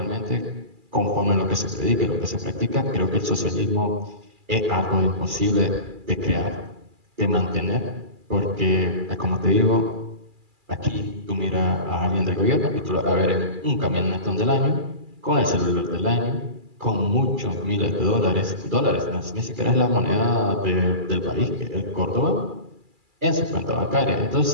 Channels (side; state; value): left; late; 2.4 ms